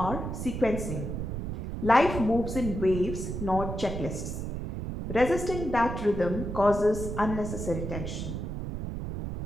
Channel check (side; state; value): right; noise; rumble, 5 dB below the sound